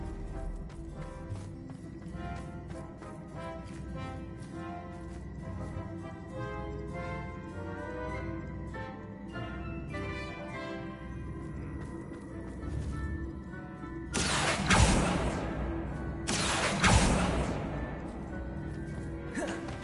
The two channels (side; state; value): both; identical; correlation 1.00